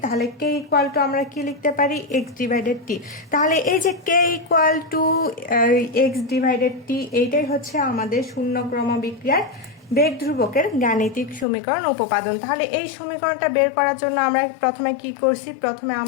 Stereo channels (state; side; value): drops out; right; at 11.5 s